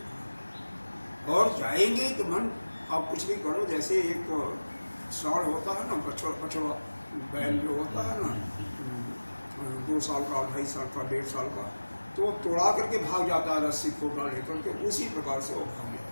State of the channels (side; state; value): both; inverted; correlation -1.00